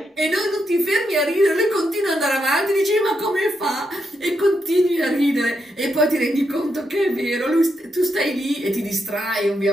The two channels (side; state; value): both; normal; correlation 0.82